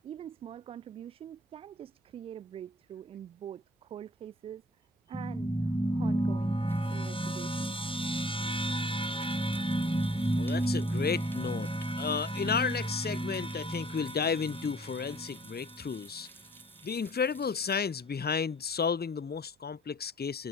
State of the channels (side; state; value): both; normal; correlation 0.54